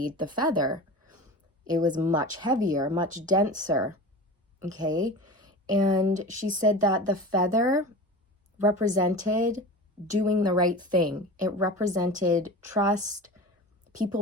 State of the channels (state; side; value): normal; both; correlation 0.33